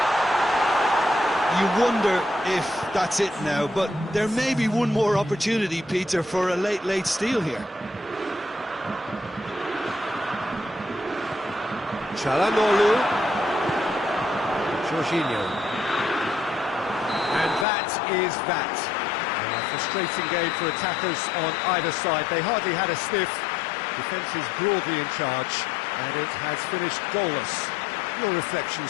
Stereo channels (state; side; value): drops out; right; at 17.7 s